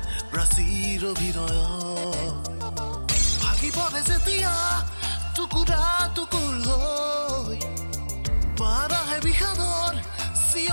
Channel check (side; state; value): both; inverted; correlation -1.00